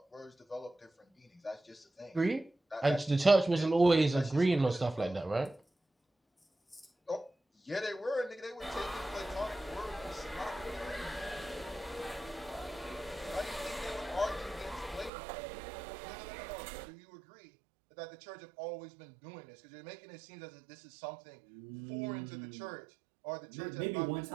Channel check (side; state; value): left; drops out; at 15.1 s